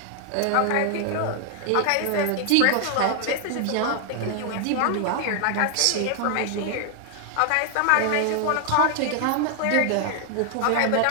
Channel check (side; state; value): both; different; correlation 0.00